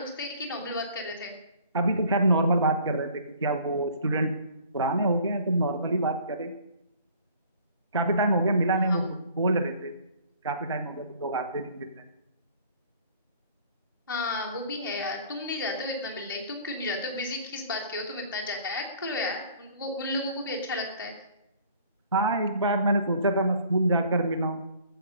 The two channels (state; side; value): inverted; both; correlation -0.53